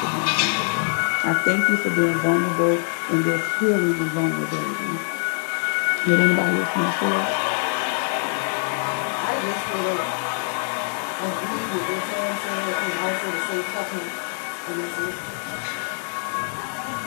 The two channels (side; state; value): right; silent; 63 dB below the other